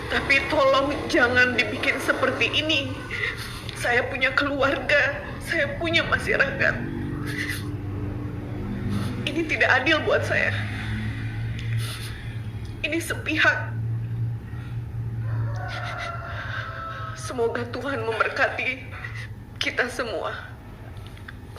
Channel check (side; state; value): both; identical; correlation 1.00